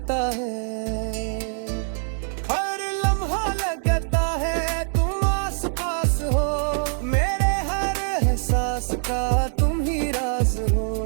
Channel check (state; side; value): silent; left; digital silence